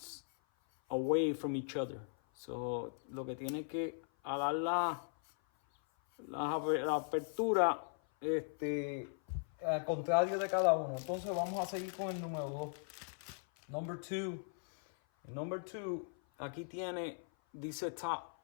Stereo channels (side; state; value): right; silent; 52 dB below the other